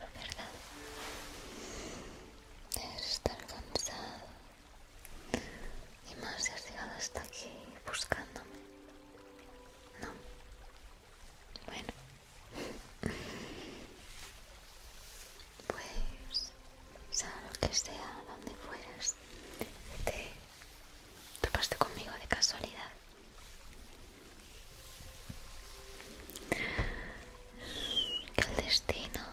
¿verdad? Debes estar cansado. Y más si has llegado hasta aquí buscándome. No. Bueno. Pues, sea lo que sea, donde fueras, te topaste conmigo de casualidad. Que el destino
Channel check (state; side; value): identical; both; correlation 1.00